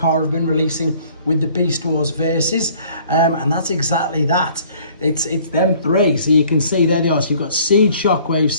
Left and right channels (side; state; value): both; inverted; correlation -0.56